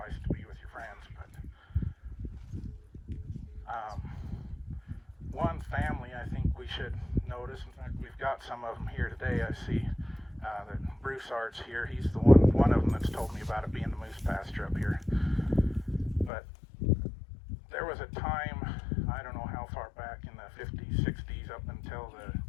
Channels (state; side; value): drops out; right; at 16.3 s